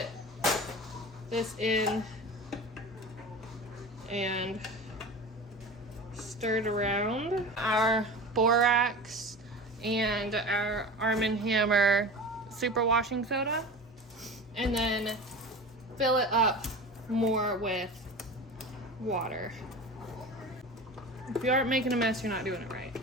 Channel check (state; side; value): normal; both; correlation 0.33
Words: this in and stirred around our borax and our Arm & Hammer super washing soda, and then fill it up more with water. If you aren't making a mess, you're not doing it right.